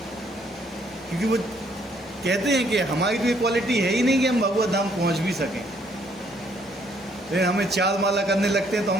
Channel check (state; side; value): normal; both; correlation 0.67